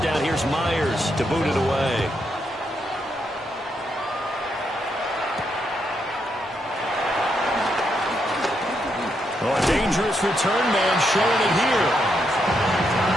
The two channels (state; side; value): normal; both; correlation 0.80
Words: here's Myers to boot it away. Oh, a dangerous return man showing it